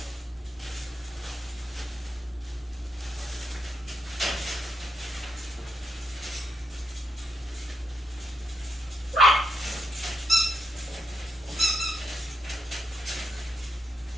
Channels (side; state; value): both; normal; correlation 0.80